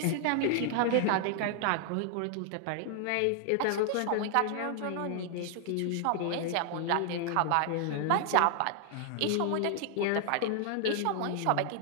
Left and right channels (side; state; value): both; different; correlation 0.00